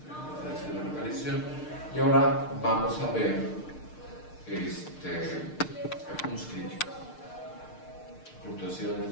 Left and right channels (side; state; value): right; late; 6.6 ms